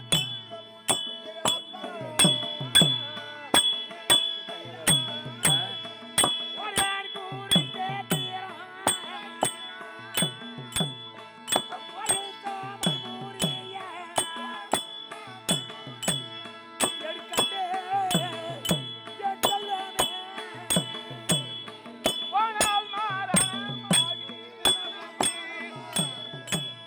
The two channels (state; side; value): identical; both; correlation 1.00